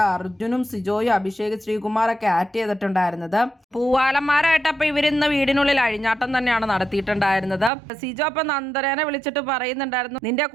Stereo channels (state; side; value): drops out; left; at 7.7 s